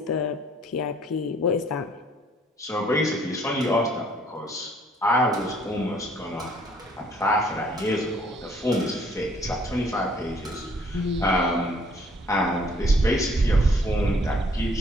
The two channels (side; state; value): both; normal; correlation 0.61